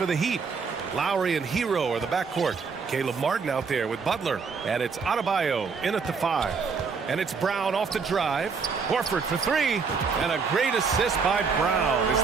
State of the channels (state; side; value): quieter; left; 5.4 dB